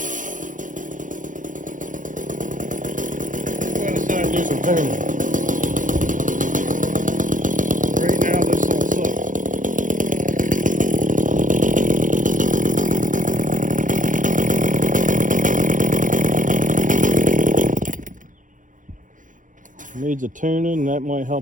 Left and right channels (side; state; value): left; late; 0.38 ms